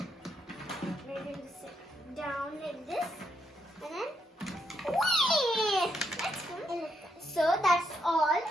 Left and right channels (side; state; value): both; normal; correlation 0.78